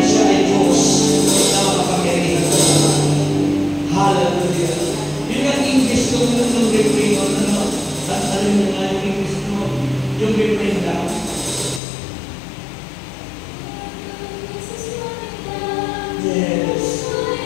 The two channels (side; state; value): right; drops out; at 11.8 s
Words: siya ay Diyos na makapangyarihan sa amin. Hallelujah. Yun ang English ko ng refrain mo, ano? Ano mo nga yung English mo? Yung refrain lang. Yes.